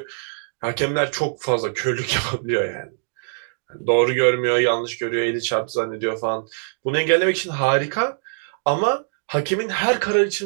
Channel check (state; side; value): silent; left; digital silence